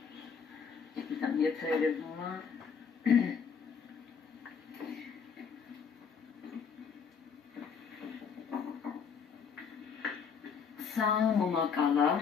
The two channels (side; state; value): right; quieter; 6.4 dB